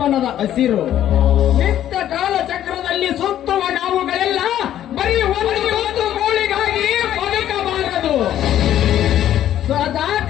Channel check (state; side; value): quieter; right; 11.6 dB